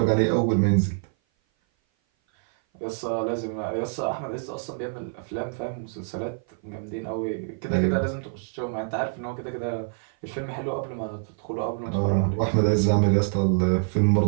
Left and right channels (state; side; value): silent; left; 57 dB below the other